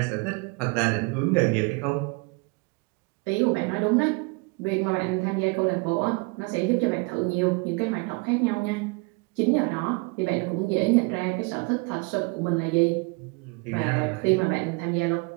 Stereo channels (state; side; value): quieter; left; 29.3 dB